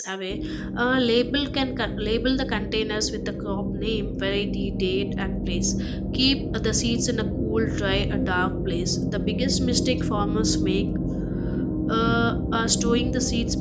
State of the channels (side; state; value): both; identical; correlation 1.00